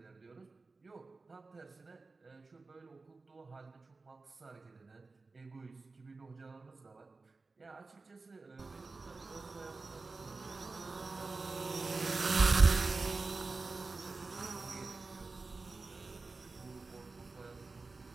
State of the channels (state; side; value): quieter; left; 3.8 dB